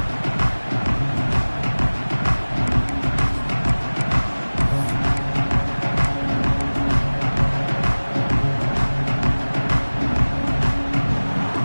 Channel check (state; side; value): inverted; both; correlation -1.00